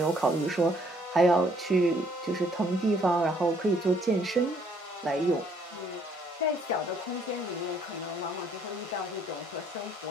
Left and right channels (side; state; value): both; normal; correlation 0.64